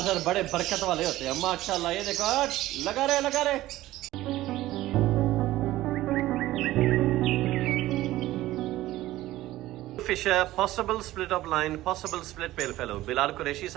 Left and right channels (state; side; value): quieter; left; 16.0 dB